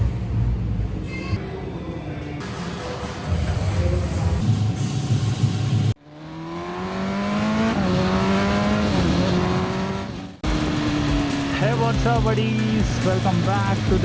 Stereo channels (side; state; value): both; identical; correlation 1.00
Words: Hey, what's up buddies? Welcome back to